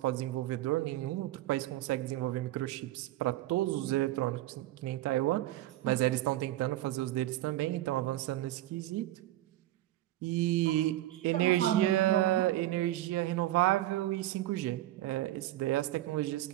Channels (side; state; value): left; quieter; 15.0 dB